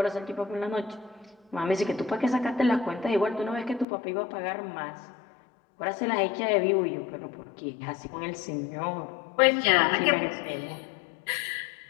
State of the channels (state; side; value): drops out; right; at 3.9 s